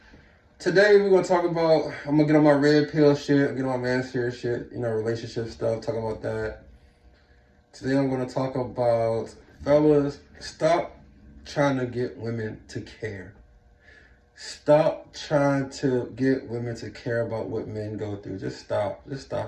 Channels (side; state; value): both; identical; correlation 1.00